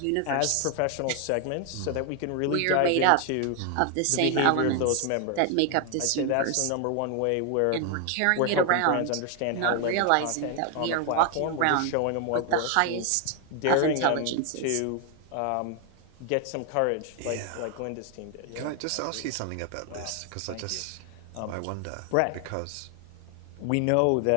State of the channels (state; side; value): different; both; correlation 0.00